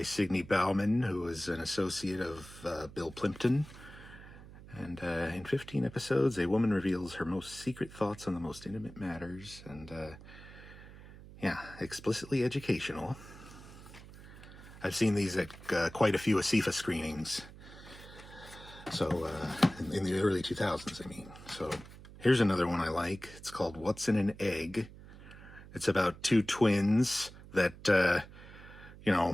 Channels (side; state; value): right; noise; hum, 17 dB below the sound